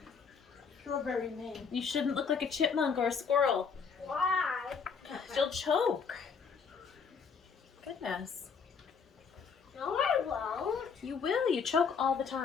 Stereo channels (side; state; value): right; quieter; 5.8 dB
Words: Strawberry man. You shouldn't look like a chipmunk or a squirrel. Why? You'll choke. Goodness. No, I won't. You will. You choke all the